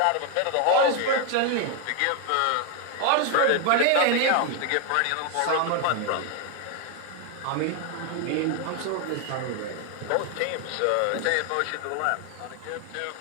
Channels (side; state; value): both; different; correlation 0.01